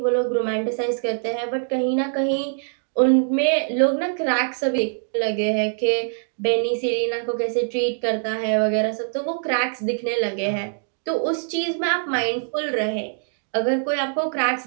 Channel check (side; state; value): left; silent; digital silence